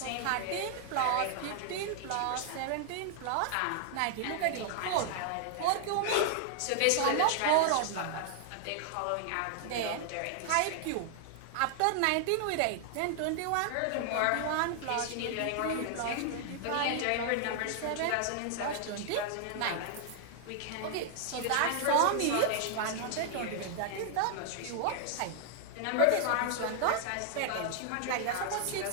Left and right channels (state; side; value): different; both; correlation 0.00